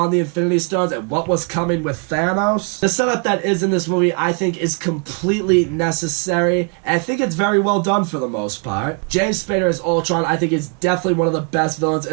the Infinity Stones and what was coming with Thanos. The setup that is in this movie, I think, is completely necessary, and I think it's very well done for the most part. James Spader as Ultron, I think, is definitely one of the best villains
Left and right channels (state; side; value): quieter; left; 39.2 dB